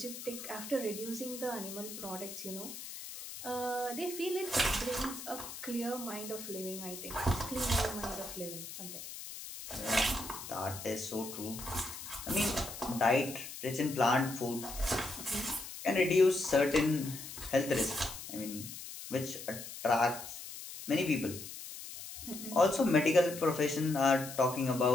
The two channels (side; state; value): left; noise; hiss, 11 dB below the sound